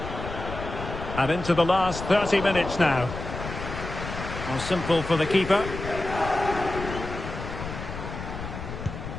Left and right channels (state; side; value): noise; left; rumble, 8 dB below the sound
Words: And into the last 30 minutes now. Well, simple for the keeper.